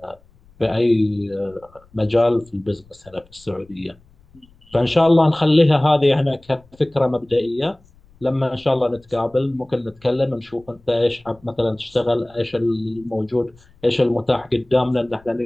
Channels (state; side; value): noise; left; rumble, 29 dB below the sound